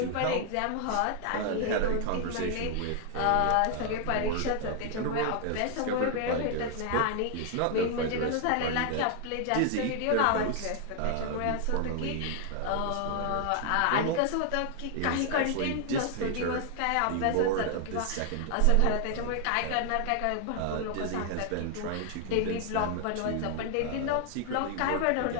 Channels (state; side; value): different; both; correlation 0.00